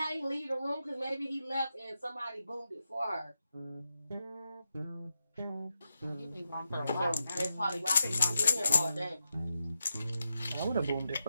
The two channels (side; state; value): both; inverted; correlation -0.87